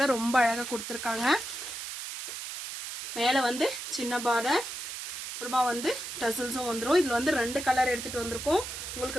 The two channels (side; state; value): right; noise; hiss, 7 dB below the sound